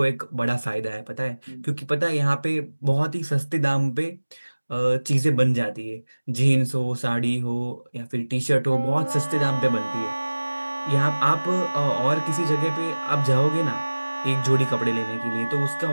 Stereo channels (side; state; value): both; inverted; correlation -1.00